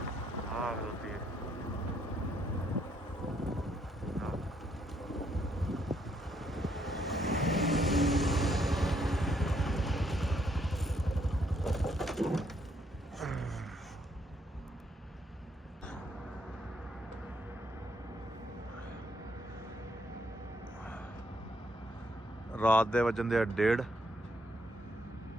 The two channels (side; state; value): both; normal; correlation 0.72